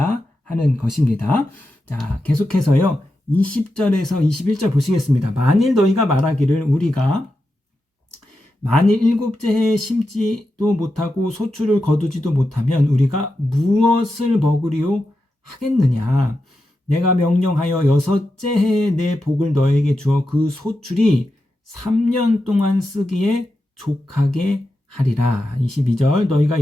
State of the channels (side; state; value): both; normal; correlation 0.89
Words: 하는 것입니다. 자, 계속해서요. 20절에서 21절 보시겠습니다. 만일 너희가 말하기를 우리가 만일 7째 해에 심지도 못하고 소출을 거두지도 못하면 우리가 무엇을 먹으리요 하겠느냐. 내가 명령하여 6째 해에 내 복을 너에게 주어 그 소출이 3년 동안 쓰기에 족하게 하리라. 22절 너희가